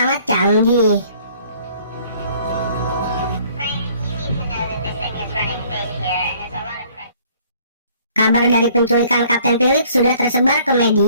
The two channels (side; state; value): both; inverted; correlation -0.58